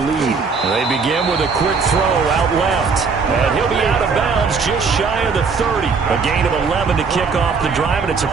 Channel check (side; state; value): left; quieter; 5.1 dB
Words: They begin with a quick throw out left. And he'll be out of bounds just shy of the 30. A gain of 11 to kick off the drive, and it's a